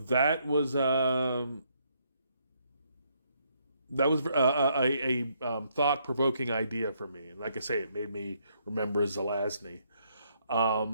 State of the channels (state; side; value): inverted; both; correlation -0.72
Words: was a thought provoking idea for me. And like I say, it made me remember Zelazny.